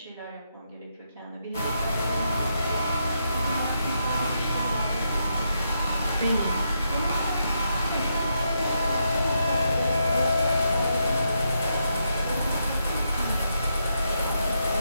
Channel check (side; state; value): both; inverted; correlation -0.81